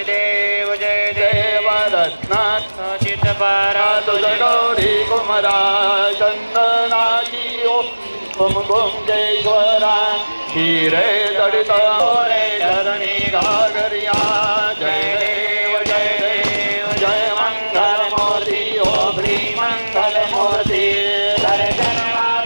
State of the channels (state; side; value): inverted; both; correlation -1.00